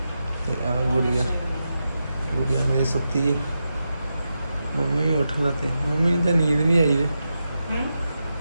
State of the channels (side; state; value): both; inverted; correlation -0.89